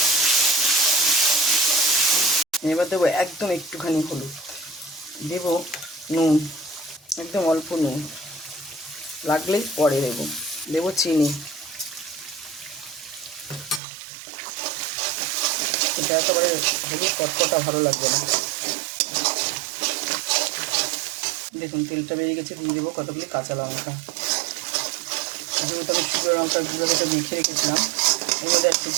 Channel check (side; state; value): left; drops out; at 13.8 s